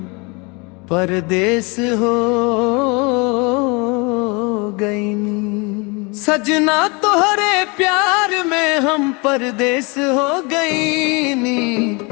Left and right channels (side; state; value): right; quieter; 29.2 dB